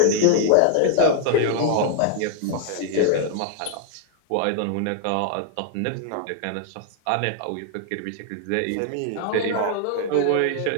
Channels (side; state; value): both; different; correlation 0.00